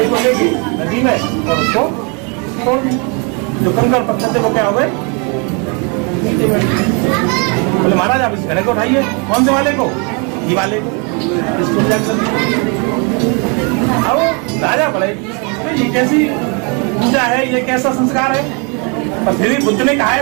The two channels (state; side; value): quieter; left; 34.1 dB